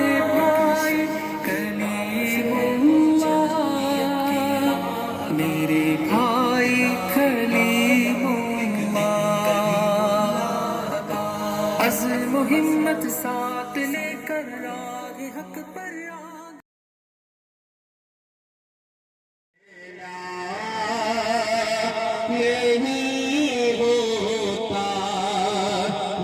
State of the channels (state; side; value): identical; both; correlation 1.00